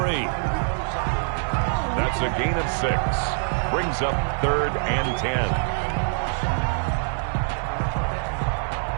That's a gain of 6. Brings up 3rd and 10.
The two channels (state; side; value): silent; left; 62 dB below the other